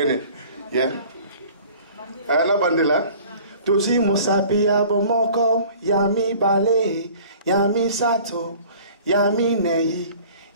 innit? Yeah? Ana bandela. Toji musapi abomoko, Yami bale, Yami sato, Yami nei.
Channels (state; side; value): inverted; both; correlation -0.48